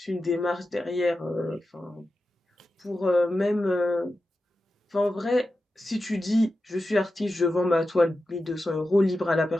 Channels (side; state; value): both; normal; correlation 0.91